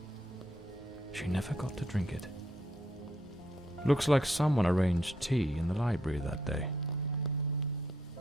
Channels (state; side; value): normal; both; correlation 0.74